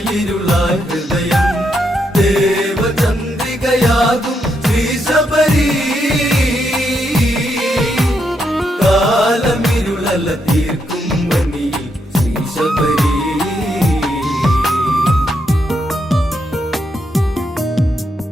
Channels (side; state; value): both; normal; correlation 0.79